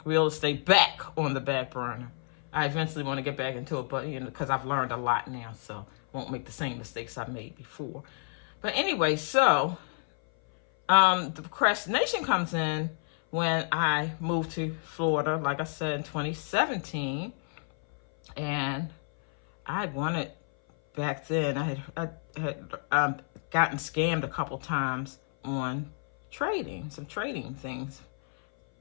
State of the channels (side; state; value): right; silent; 56 dB below the other